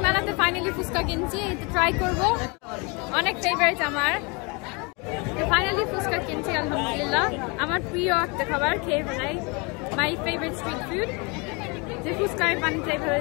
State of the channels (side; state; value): right; quieter; 30.0 dB